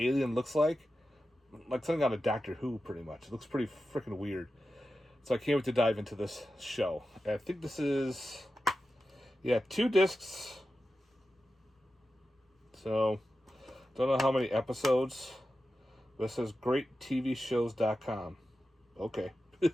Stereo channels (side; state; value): both; normal; correlation 0.92